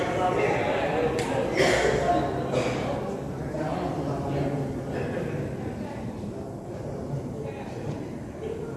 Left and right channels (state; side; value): identical; both; correlation 1.00